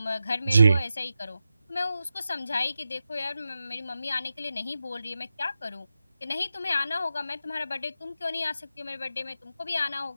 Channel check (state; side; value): inverted; both; correlation -0.91